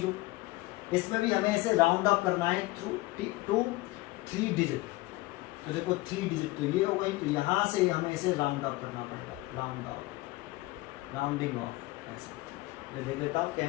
इसमें भी हमें इसे राउंड अप करना है टू 3 डिजिट। तो देखो 3 डिजिट तो ये हो गई, तो यहाँ से हमें इसे राउंड अप करना पड़ेगा, राउंड अप, राउंडिंग ऑफ। ऐसा देख लेता हूँ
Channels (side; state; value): right; quieter; 20.1 dB